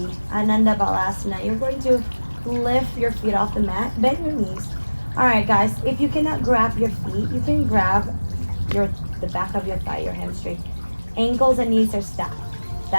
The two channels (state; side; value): inverted; both; correlation -1.00